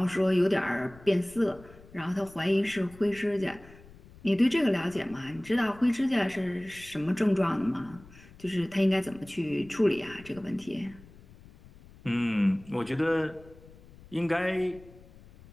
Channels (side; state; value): left; noise; rumble, 22 dB below the sound